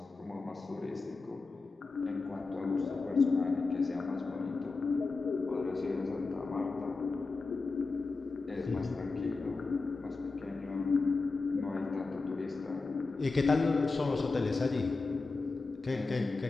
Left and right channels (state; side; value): quieter; right; 3.9 dB